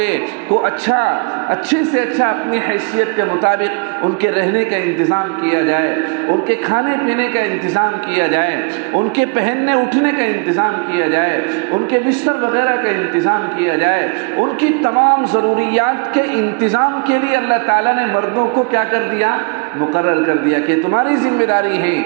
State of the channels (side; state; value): left; quieter; 36.1 dB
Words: کو اچھے سے اچھا اپنی حیثیت کے مطابق ان کے رہنے کا انتظام کیا جائے، ان کے کھانے پینے کا انتظام کیا جائے، ان کے پہننے اٹھنے کا انتظام کیا جائے، ان کے بستر وغیرہ کا انتظام کیا جائے، ان کی تمام ضروریات کے انتظام کے لیے اللہ تعالیٰ نے مردوں کو کیا کر دیا؟ مقرر کر دیا کہ تمہاری ذمہ داری ہے